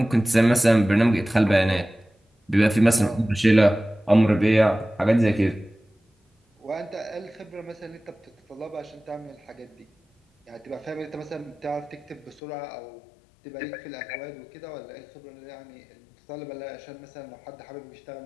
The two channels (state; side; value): drops out; right; at 12.4 s